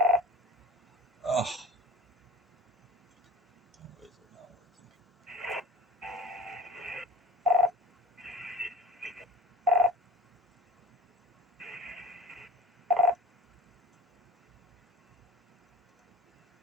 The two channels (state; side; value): normal; both; correlation 0.44